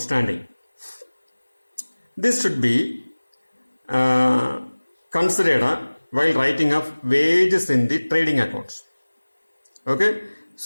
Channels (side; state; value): both; inverted; correlation -1.00